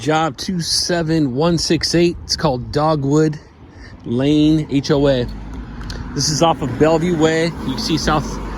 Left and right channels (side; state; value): both; identical; correlation 1.00